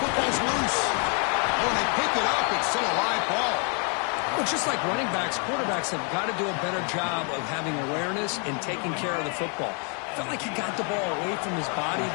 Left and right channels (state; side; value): quieter; right; 38.7 dB